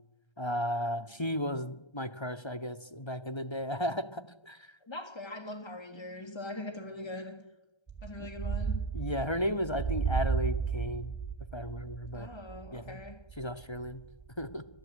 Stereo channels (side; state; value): right; late; 1.3 ms